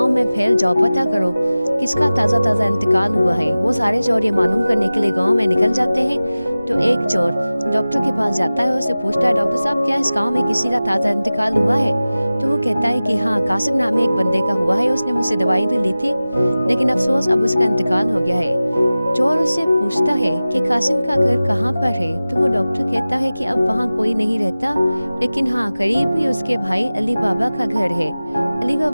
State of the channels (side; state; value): both; inverted; correlation -0.97